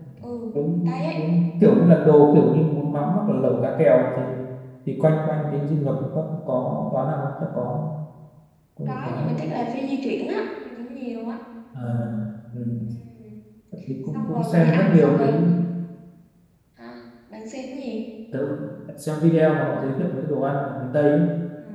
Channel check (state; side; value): identical; both; correlation 1.00